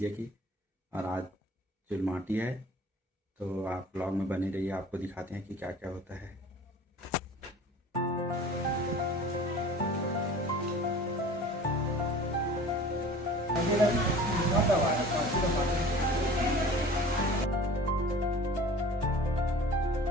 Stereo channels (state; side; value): normal; both; correlation 0.43